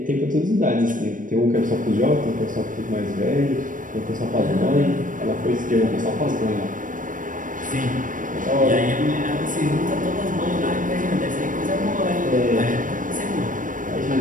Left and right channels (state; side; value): late; left; 0.38 ms